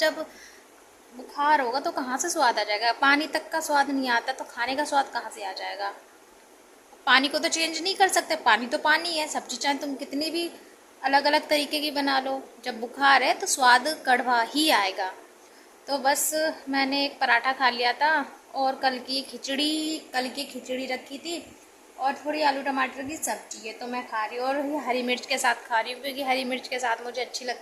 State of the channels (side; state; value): both; identical; correlation 1.00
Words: बुखार होगा तो कहाँ से स्वाद आ जाएगा? पानी तक का स्वाद नहीं आता तो खाने का स्वाद कहाँ से आ जाएगा? पानी को तो चेंज नहीं कर सकते, पानी तो पानी है। सब्जी चाहे तुम कितनी भी अलग अलग तरीके की बना लो, जब बुखार है तो स्वाद कड़वा ही आएगा। तो बस मैंने एक पराठा खा लिया था, और कल की खिचड़ी रखी थी, और थोड़ी आलू टमाटर की सब्जी है तो मैं खा रही हूँ। और ये हरी मिर्च के साथ खा रही हूँ, क्योंकि हरी मिर्च के साथ मुझे अच्छी